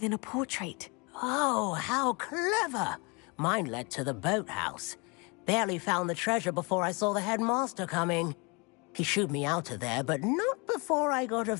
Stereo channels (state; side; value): quieter; right; 29.8 dB